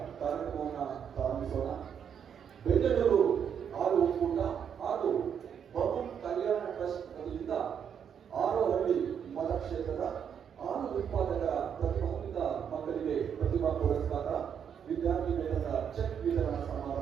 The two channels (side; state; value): left; quieter; 7.9 dB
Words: ಕಾರ್ಯಕ್ರಮವನ್ನು ಪ್ರಾರಂಭಿಸೋಣ. ಬೆಂಗಳೂರು ಹಾಲು ಒಕ್ಕೂಟ ಹಾಗೂ ಬಮೂಲ್ ಕಲ್ಯಾಣ ಟ್ರಸ್ಟ್ ವತಿಯಿಂದ ಹಾರೋಹಳ್ಳಿ ಮತಕ್ಷೇತ್ರದ ಹಾಲು ಉತ್ಪಾದಕರ ಪ್ರತಿಭಾನ್ವಿತ ಮಕ್ಕಳಿಗೆ ಪ್ರತಿಭಾ ಪುರಸ್ಕಾರ, ವಿದ್ಯಾರ್ಥಿ ವೇತನದ ಚೆಕ್ ವಿತರಣಾ